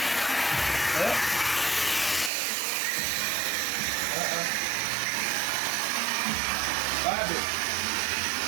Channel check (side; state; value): left; drops out; at 2.3 s